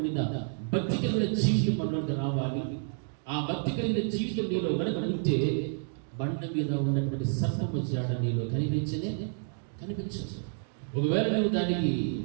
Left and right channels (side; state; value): left; silent; 58 dB below the other